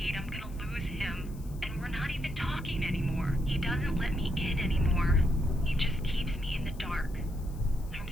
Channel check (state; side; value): noise; left; hiss, 24 dB below the sound